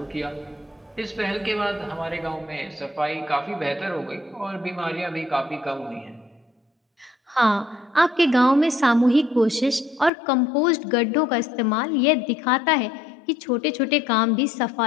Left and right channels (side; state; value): right; drops out; at 10.1 s